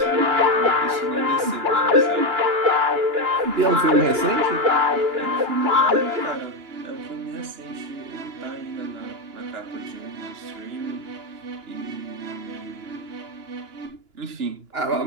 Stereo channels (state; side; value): late; left; 2.9 ms